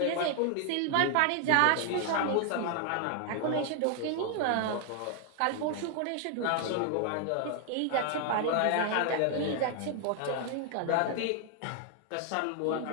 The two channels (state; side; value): different; both; correlation 0.00